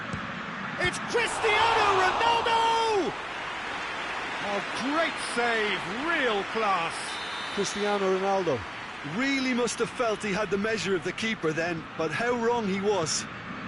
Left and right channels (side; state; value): both; identical; correlation 1.00